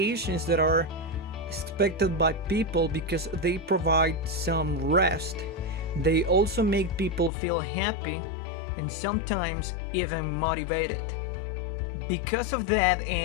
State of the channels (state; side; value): drops out; right; at 7.3 s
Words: that are expected by people because they provide some rest. They also make people feel happy and sometimes even motivated. Because of that,